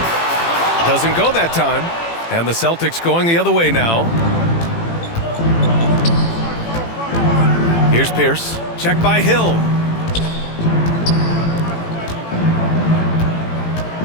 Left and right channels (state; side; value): late; right; 18 ms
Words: Doesn't go that time. And the Celtics going the other way now. Here's Pierce. Checked by Hill.